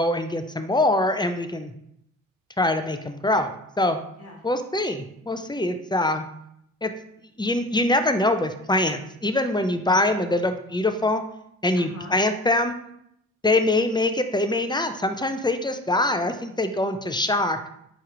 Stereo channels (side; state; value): both; normal; correlation 0.39